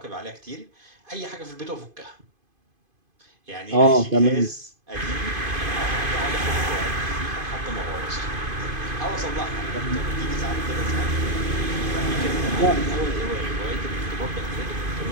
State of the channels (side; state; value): left; late; 2.5 ms